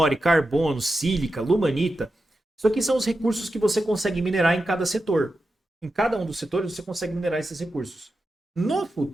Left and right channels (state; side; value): normal; both; correlation 0.90